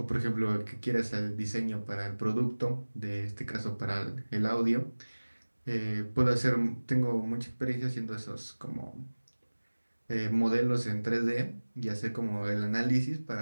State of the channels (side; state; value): both; inverted; correlation -1.00